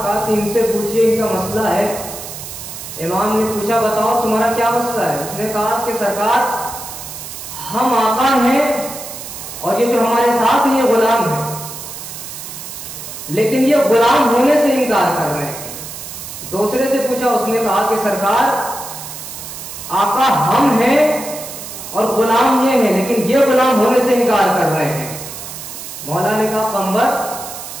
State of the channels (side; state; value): right; noise; hiss, 10 dB below the sound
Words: کہا کہ ان سے پوچھئے، ان کا مسئلہ ہے۔ امام نے پوچھا بتاؤ تمہارا کیا مسئلہ ہے؟ اس نے کہا کہ سرکار ہم آقا ہیں اور یہ جو ہمارے ساتھ ہیں یہ غلام ہیں، لیکن یہ غلام ہونے سے انکار کر رہے ہیں۔ دوسرے سے پوچھا، اس نے کہا کہ سرکار آقا ہم ہیں اور غلام یہ ہیں، لیکن یہ غلام ہونے سے انکار کر رہے ہیں۔ مولا نے کہا قمبر